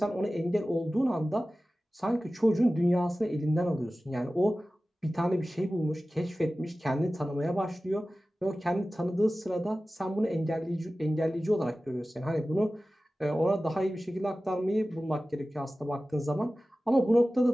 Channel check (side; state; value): both; normal; correlation 0.96